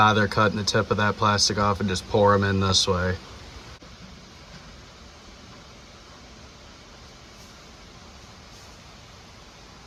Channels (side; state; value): both; identical; correlation 1.00